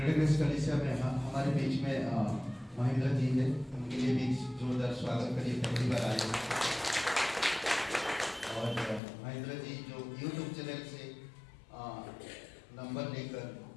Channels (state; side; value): drops out; right; at 9.0 s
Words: कलीसिया में हमारे बीच में महेंद्र जी है, उनके लिए भी जोरदार स्वागत करिए, पहली बार आए। और महेंद्र जी जो यूट्यूब चैनल से नंबर लेकर